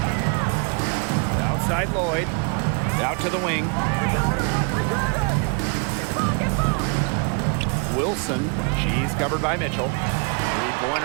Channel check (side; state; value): left; quieter; 35.3 dB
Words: Outside Lloyd. Out to the wing. Wilson. She's covered by Mitchell.